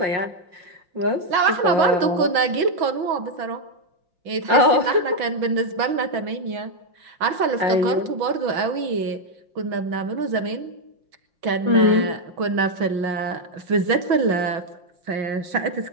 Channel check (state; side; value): late; left; 6.2 ms